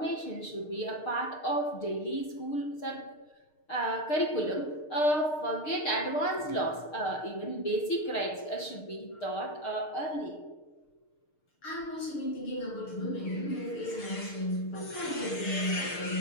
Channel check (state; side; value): late; right; 6.6 ms